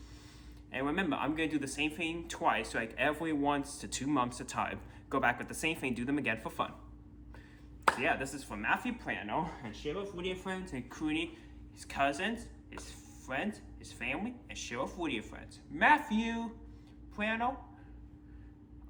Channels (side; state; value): both; identical; correlation 1.00